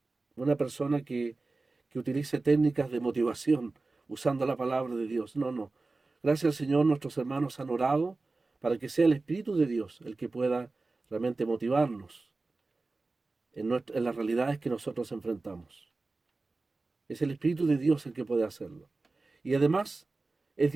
persona que utilice técnicas de motivación usando la palabra de Dios. No, no. Gracias al Señor nuestros hermanos han orado para que sea el Espíritu de Dios el que pueda realmente motivarnos en las realidades que nosotros enfrentamos. Es el Espíritu de Dios el que puede hacerlo. Y además es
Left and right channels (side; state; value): left; quieter; 3.5 dB